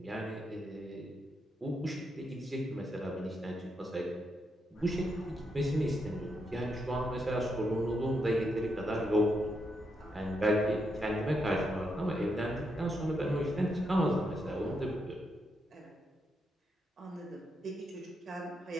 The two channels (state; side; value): normal; both; correlation 0.81